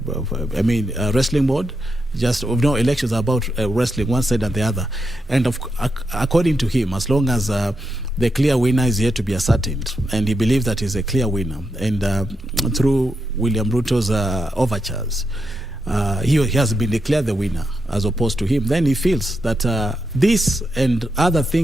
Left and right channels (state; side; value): normal; both; correlation 0.85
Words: wrestling mode. Elections are about wrestling one side and the other. And according to him, as long as the clear winner is yet to be ascertained, and he believes that he's a clear winner, and through William Ruto's overtures, he has been declared the winner as opposed to him, then he feels that this and other